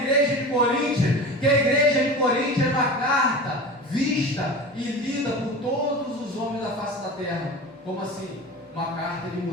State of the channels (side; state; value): both; normal; correlation 0.33